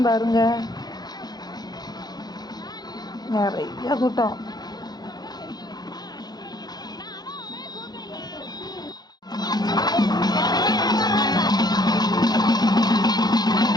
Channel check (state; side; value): late; right; 0.19 ms